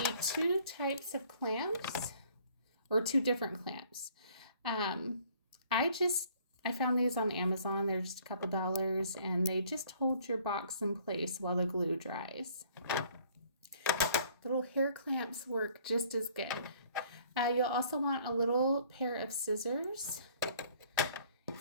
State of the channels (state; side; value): inverted; both; correlation -0.58